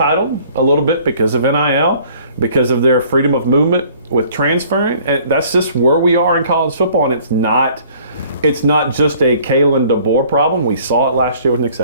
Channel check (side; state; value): both; inverted; correlation -0.56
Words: a little bit because of NIL, because of their freedom of movement with transferring. And that's just where we are in college football, and it's not just a Kalen DeBoer problem. We saw it last year with Nick